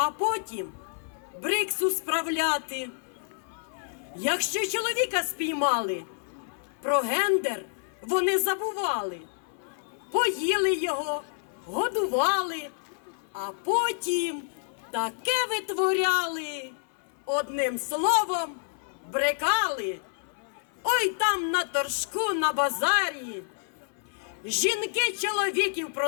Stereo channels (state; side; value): silent; right; 56 dB below the other